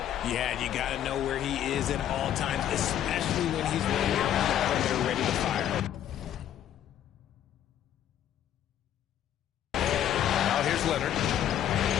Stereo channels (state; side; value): quieter; right; 10.9 dB